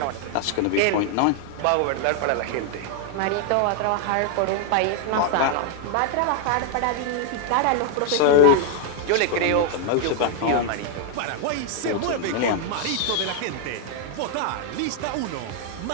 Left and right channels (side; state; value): both; different; correlation -0.01